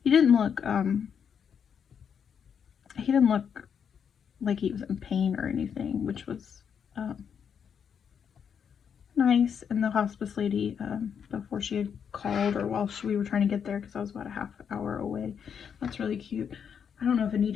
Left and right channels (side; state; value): right; quieter; 7.4 dB